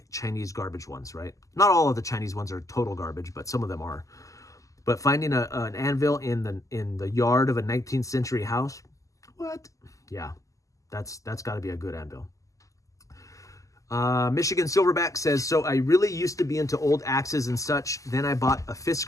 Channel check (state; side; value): late; right; 0.16 ms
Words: Chinese garbage ones, right? Not all of the Chinese ones are total garbage, but some of them are. But finding an anvil in the yard of a 19th century house, what? Yeah, that's got to be a good anvil. Michigan Silverback says, so I really used to be into old axes and such. Then I bought a